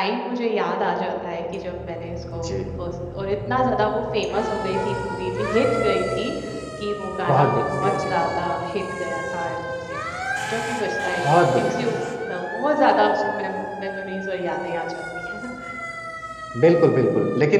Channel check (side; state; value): both; identical; correlation 1.00